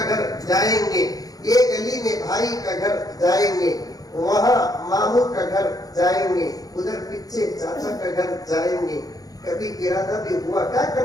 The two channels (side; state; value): right; late; 0.18 ms